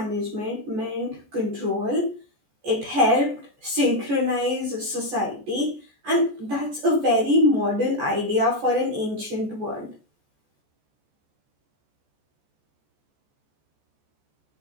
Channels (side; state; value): left; late; 14 ms